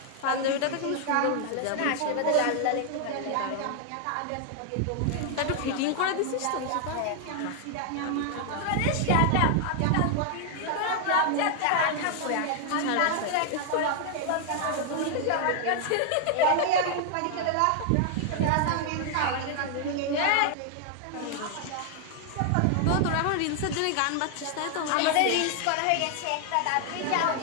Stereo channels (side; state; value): both; different; correlation 0.00